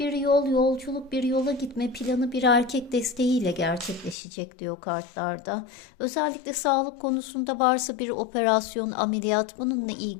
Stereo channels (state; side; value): drops out; right; at 4.2 s